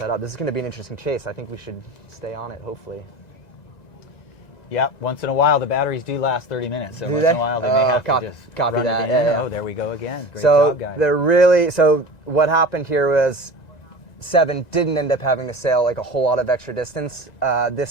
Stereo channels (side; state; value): right; late; 1.9 ms